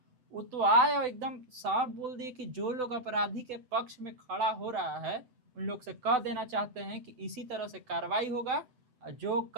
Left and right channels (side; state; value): left; late; 7.9 ms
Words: वो तो आए और एकदम साफ बोल दिए कि जो लोग अपराधी के पक्ष में खड़ा हो रहा है उन लोग से कह देना चाहते हैं कि इसी तरह से कार्रवाई होगा, जो